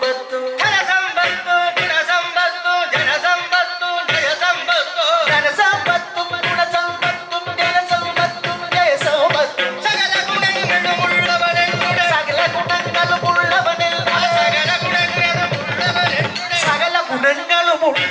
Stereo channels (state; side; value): identical; both; correlation 1.00